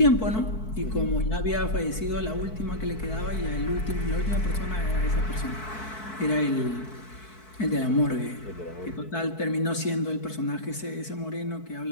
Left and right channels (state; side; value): late; right; 4.6 ms